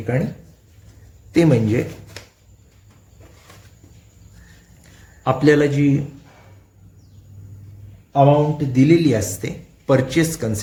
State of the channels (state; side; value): identical; both; correlation 1.00